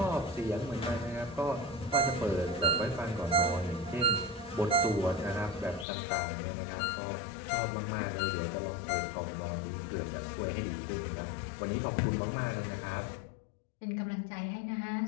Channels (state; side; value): drops out; right; at 5.9 s